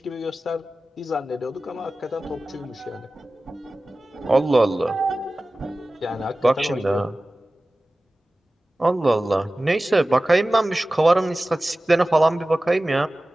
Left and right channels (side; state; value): both; normal; correlation 0.97